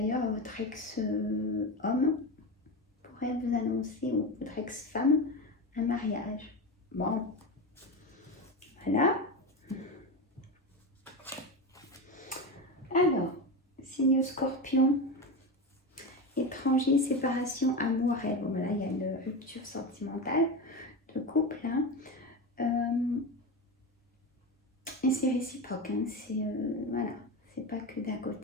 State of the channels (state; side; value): normal; both; correlation 0.20